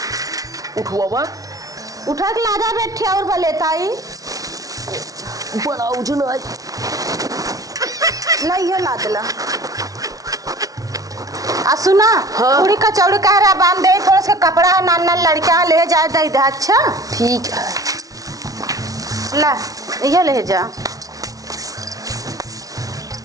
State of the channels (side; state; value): left; late; 0.18 ms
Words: उठवा उठा के लादा बैठे और बलेताई बड़ा उजन है नहीं है लादला आ सुना। हाँ? पूरी कचौड़ी कह रहा बांध दे थोड़ा सा कपड़ा नान लड़का ले जा दे दे। अच्छा ठीक है ला ये ले जा